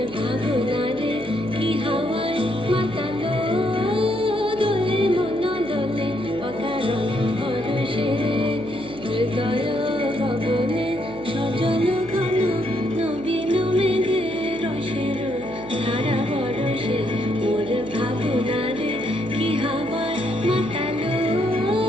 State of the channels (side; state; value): right; noise; hum, 20 dB below the sound